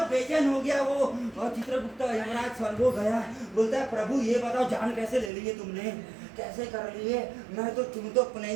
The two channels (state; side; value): drops out; left; at 5.3 s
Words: बेचैन हो गया वो, और चित्रगुप्त यमराज स्वर्गो गया, बोलता है प्रभु ये बताओ जान कैसे ले ली है तुमने, कैसे कर लिए? तुम तो